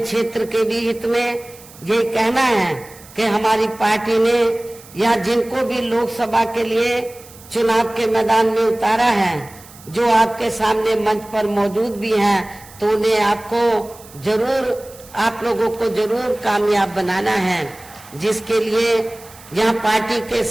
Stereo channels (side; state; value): right; noise; hiss, 21 dB below the sound